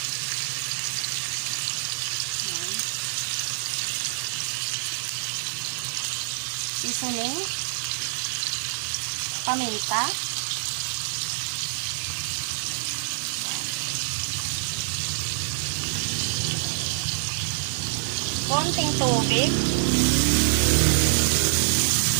Ayan. Seasoning. Paminta. Konting tubig.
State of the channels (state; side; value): silent; left; 61 dB below the other